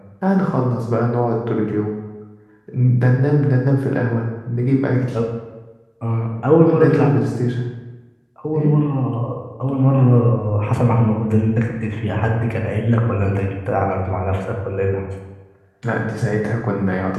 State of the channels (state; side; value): identical; both; correlation 1.00